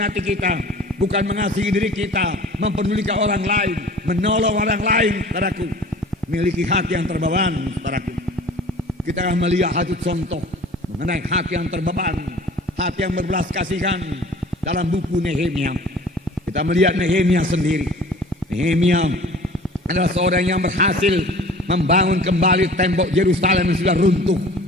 kita, bukan mengasihi diri kita, mempedulikan orang lain, menolong orang lain, saudaraku. Miliki hati yang terbeban, saudaraku. Kita akan melihat satu contoh mengenai hati yang terbeban, hati yang berbelas kasihan dalam buku Nehemia. Kita melihat Nehemia sendiri. Nehemia adalah seorang yang berhasil membangun kembali tembok Yerusalem yang sudah runtuh.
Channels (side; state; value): both; normal; correlation 0.45